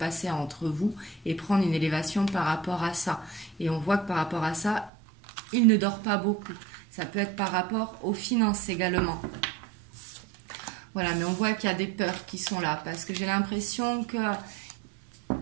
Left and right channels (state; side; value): drops out; left; at 4.9 s